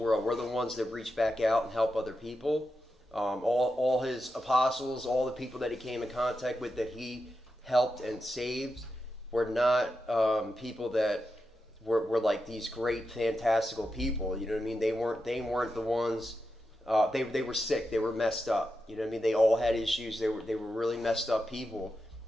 We're the ones that reach back out and help other people. All his apostles, all the people that he came in contact with that he helped and saved were not people that were like these great, fantastical people. You know what I mean? They weren't the ones. They were sick. They were messed up. You know what I mean? They all had issues. They were really messed up people,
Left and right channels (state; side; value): normal; both; correlation 0.88